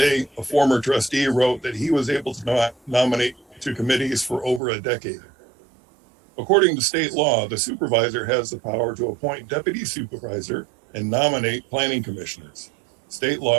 a former trustee wrote that he was able to nominate to committees for over a decade. According to state law, the supervisor has the power to appoint deputy supervisor and nominate planning commissioners. State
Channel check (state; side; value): drops out; left; at 4.6 s